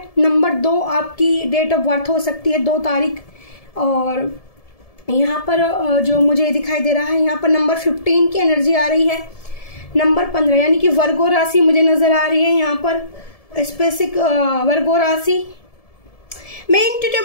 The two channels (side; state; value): right; late; 1.7 ms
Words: नंबर 2 आपकी डेट ऑफ बर्थ हो सकती है, 2 तारीख। और यहाँ पर जो मुझे दिखाई दे रहा है, यहाँ पर नंबर 15 की एनर्जी आ रही है, नंबर 15 यानी कि वर्गो राशि मुझे नजर आ रही है यहाँ पर, स्पेसिफिक वर्गो राशि। मैं